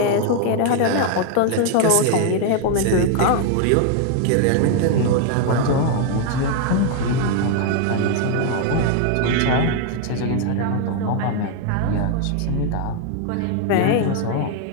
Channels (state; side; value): different; both; correlation 0.00